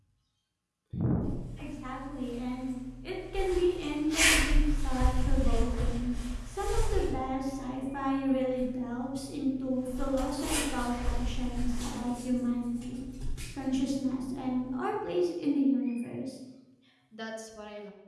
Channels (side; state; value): both; identical; correlation 1.00